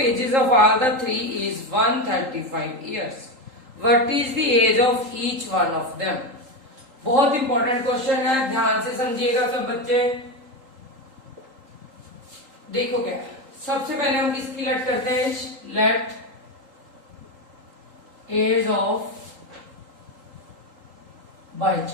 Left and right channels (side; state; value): left; late; 3.8 ms